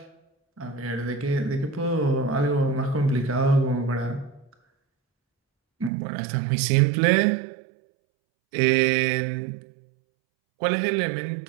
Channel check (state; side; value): drops out; left; at 5.9 s